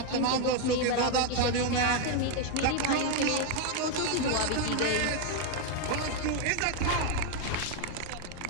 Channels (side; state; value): both; different; correlation 0.01